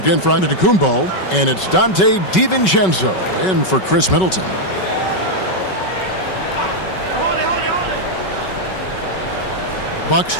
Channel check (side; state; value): right; late; 5.3 ms